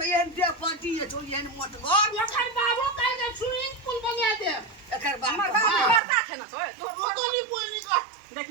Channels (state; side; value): drops out; left; at 6.0 s